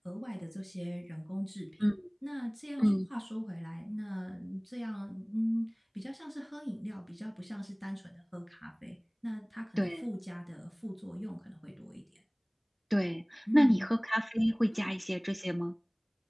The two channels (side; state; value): both; identical; correlation 1.00